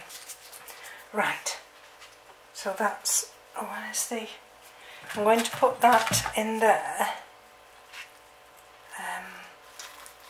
Right, so that's, oh, where's the, I'm going to put that in there.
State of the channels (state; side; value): identical; both; correlation 1.00